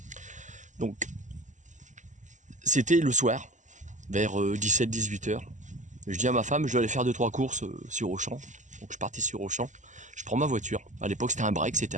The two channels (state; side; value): late; left; 0.36 ms